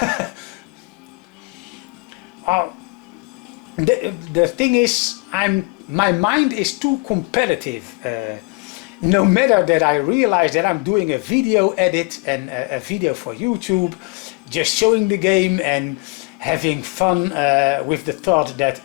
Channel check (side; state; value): right; quieter; 28.5 dB